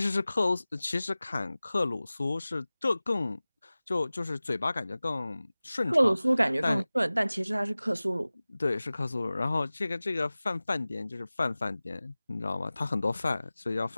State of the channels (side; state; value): both; inverted; correlation -0.98